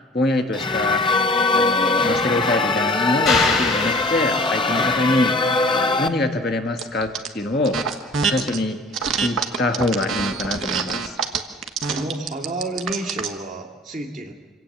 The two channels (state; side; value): normal; both; correlation 0.47